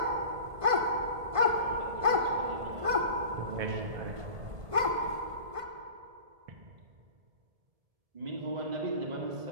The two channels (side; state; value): left; late; 1.5 ms